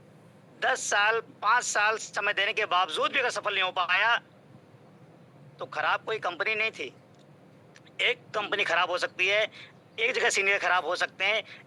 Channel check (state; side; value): identical; both; correlation 1.00